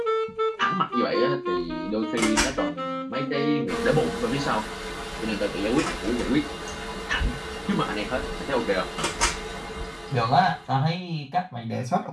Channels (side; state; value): both; identical; correlation 1.00